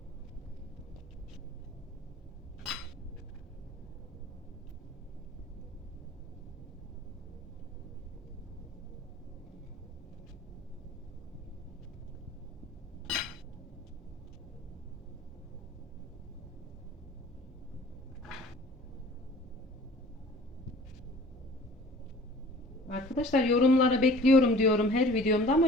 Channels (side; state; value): both; normal; correlation 0.47